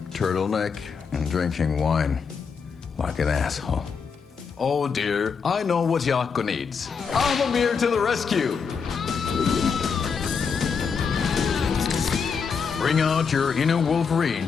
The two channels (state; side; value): quieter; right; 5.9 dB